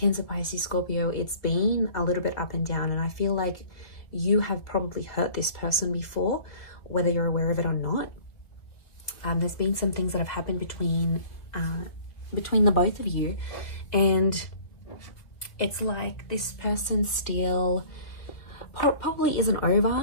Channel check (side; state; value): right; late; 2.0 ms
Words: Pisces, Scorpio, it's been a little bit up and down, and I feel like you have probably hurt this person before, whether you're aware of it or not. There's been some things that have happened between the both of you, and it's like this person still probably isn't